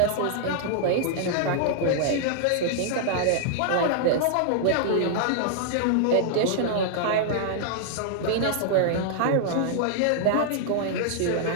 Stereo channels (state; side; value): different; both; correlation -0.01